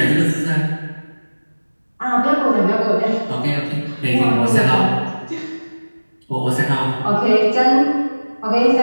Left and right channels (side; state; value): both; inverted; correlation -1.00